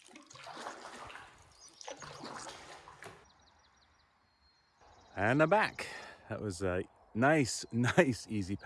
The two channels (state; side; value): identical; both; correlation 1.00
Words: And I'm back. That was a nice, easy